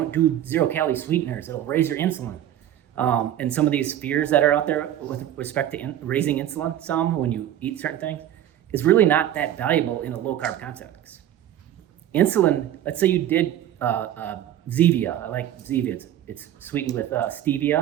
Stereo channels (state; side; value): quieter; left; 11.7 dB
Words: do 0-calorie sweeteners; it'll raise your insulin." And some of these fears that are out there with respect to raising insulin, when you eat certain things, is really not that valuable in a low carb context. Insulin, let's say you did Zevia. I like Zevia. It's sweetened with stevia,